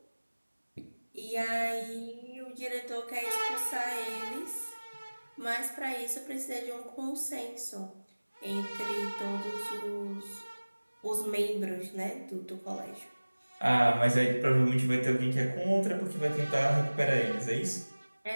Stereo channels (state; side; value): inverted; both; correlation -1.00